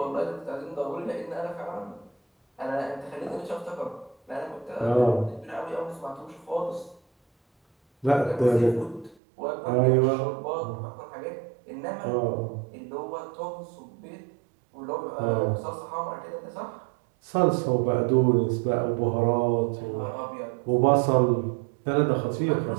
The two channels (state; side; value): drops out; left; at 9.2 s